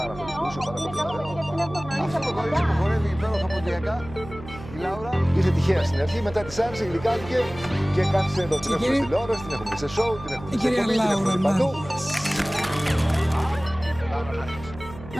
πάρα πολύ. Είναι καλό παιδί γιατί είναι προγραμματής από κοντά. Χορεύει υπέροχα ποδιακά. Η Λάουρα είχε τυχαία στην αρχή, μετά της άρεσε, γλυκάθηκε και κάθισε εδώ. Την έχουμε στην τηλεόραση, την έχουμε σε σοου, την έχουμε σε κομμάτι, την έχουμε παντού.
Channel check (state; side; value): noise; right; hum, 15 dB below the sound